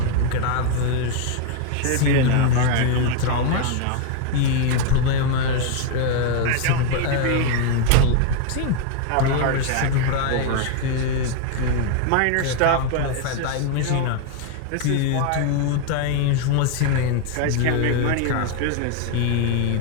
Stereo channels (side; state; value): both; different; correlation 0.01